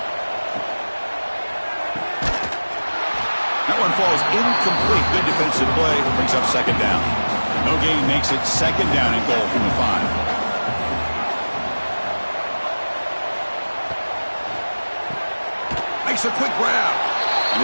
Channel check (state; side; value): inverted; both; correlation -1.00